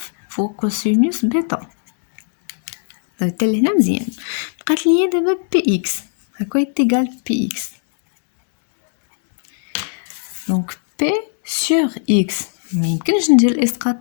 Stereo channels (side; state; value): right; silent; 66 dB below the other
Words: فوق كوسينوس بيتا. حتى لهنا مزيان. بقات لي دابا px هكا يتيغال px. دونك p sur x ما يمكنش ندير الاسقاط